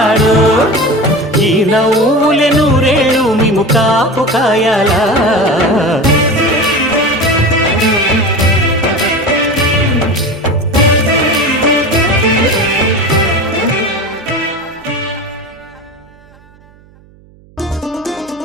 ఈ నవ్వులే నూరేళ్ళు మేము కాపు కాయాలా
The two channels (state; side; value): noise; right; hum, 27 dB below the sound